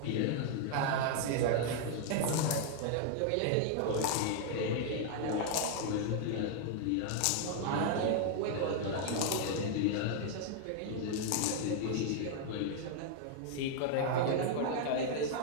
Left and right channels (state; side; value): different; both; correlation 0.00